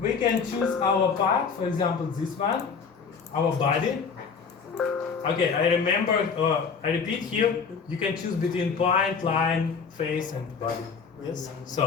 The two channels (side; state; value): right; quieter; 5.8 dB